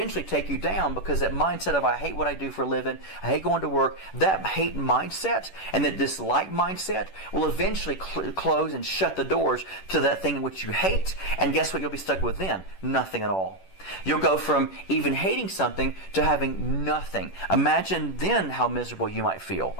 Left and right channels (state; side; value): late; right; 10 ms